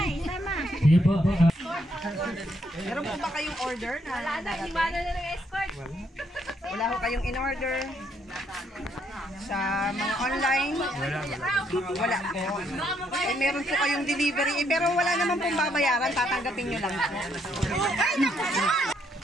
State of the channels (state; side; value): normal; both; correlation 0.72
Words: Sige po. Meron po ba kayong order na darating? Wala na ng escort. Wala ho kayong in-order sa mga online? Wala po. Eh, meron po kayong delivery. Eh, pero wala naman pong babayaran. Tatanggapin nyo lang po. Ay, naku!